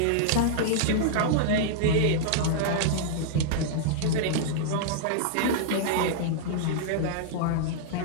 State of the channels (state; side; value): different; both; correlation -0.01